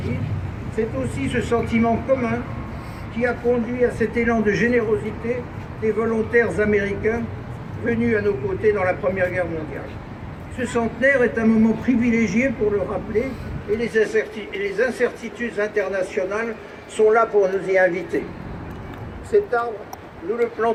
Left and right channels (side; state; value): both; identical; correlation 1.00